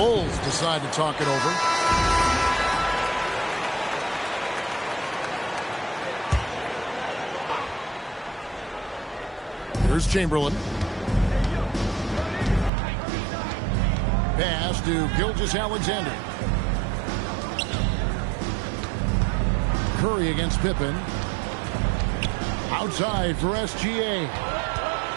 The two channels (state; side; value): drops out; left; at 12.7 s